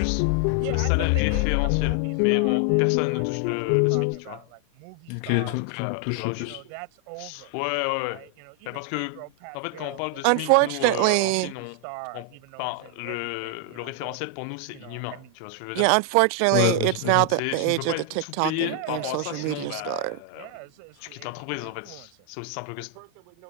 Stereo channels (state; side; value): different; both; correlation 0.00